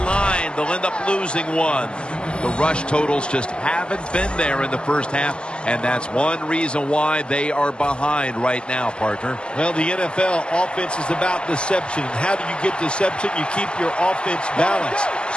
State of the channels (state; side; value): late; right; 0.050 ms